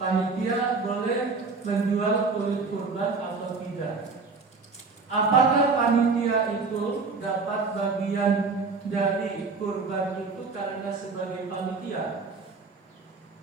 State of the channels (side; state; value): left; quieter; 4.3 dB